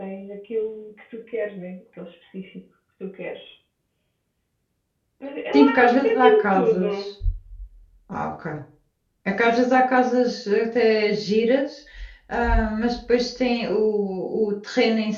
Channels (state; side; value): identical; both; correlation 1.00